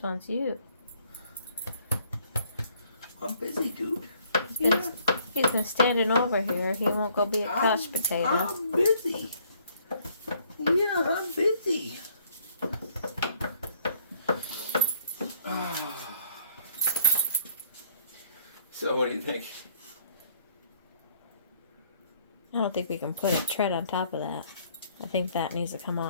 wants you. I'm busy, dude. He's been standing over here. He won't go be a couch potato. I'm busy. Yeah, I'm busy. So what do you think? I don't think we can put a tread on top of that. I think that needs to come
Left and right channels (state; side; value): inverted; both; correlation -0.63